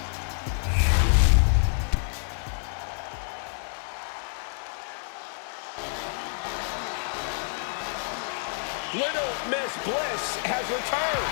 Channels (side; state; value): right; silent; 59 dB below the other